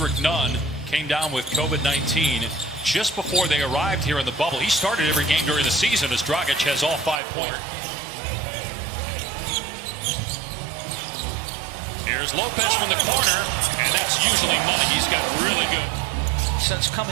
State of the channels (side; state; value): left; drops out; at 7.2 s